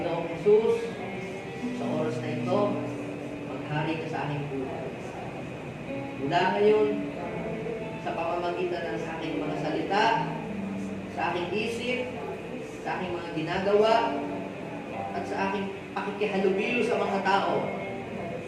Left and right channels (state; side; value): identical; both; correlation 1.00